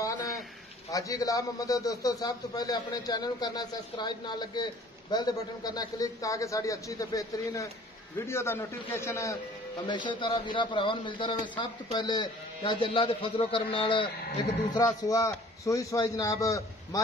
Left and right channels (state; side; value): normal; both; correlation 0.51